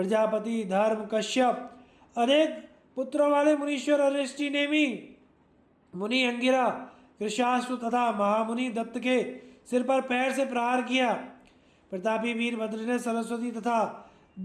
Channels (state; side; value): identical; both; correlation 1.00